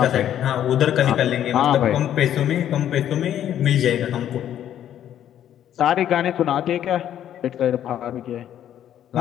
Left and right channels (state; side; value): quieter; right; 10.8 dB